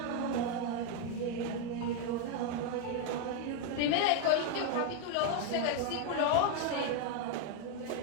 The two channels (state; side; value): different; both; correlation 0.01